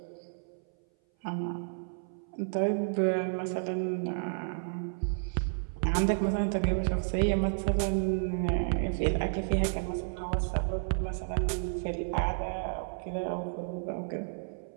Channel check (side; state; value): left; silent; 57 dB below the other